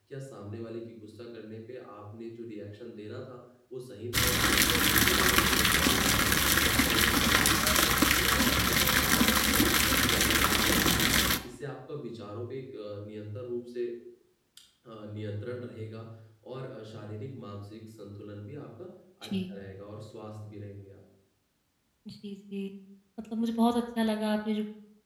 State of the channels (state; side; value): identical; both; correlation 1.00